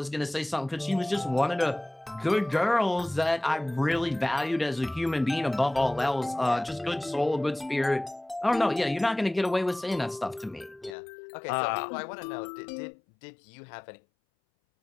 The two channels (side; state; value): right; drops out; at 11.0 s